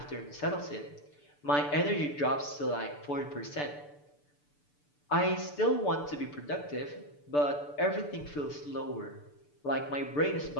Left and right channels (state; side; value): late; right; 6.8 ms